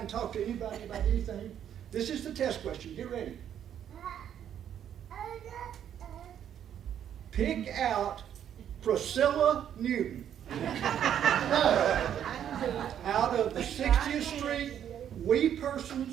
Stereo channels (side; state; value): left; quieter; 9.7 dB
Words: and talk to anybody about anything. This is the test question. Get ready. Pick out Priscilla Newton out of the 60th Street We